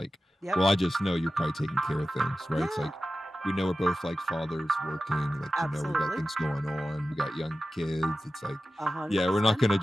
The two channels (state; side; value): normal; both; correlation 0.94